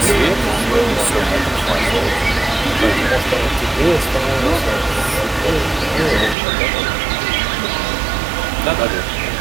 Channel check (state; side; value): drops out; left; at 6.4 s